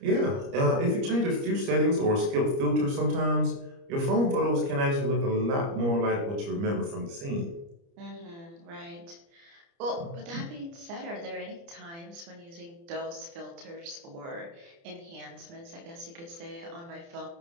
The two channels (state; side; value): late; left; 30 ms